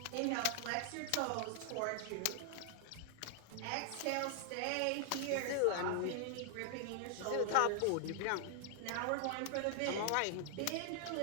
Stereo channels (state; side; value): different; both; correlation 0.00